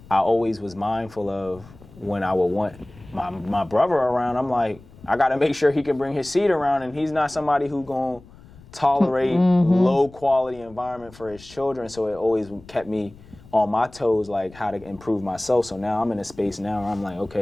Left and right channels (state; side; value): noise; left; rumble, 22 dB below the sound